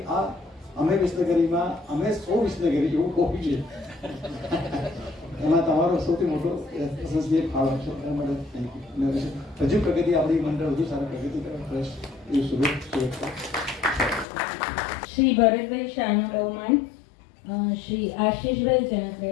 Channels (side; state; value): right; drops out; at 14.2 s